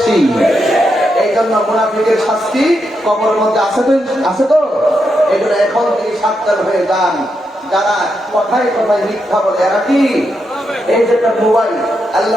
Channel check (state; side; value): normal; both; correlation 0.83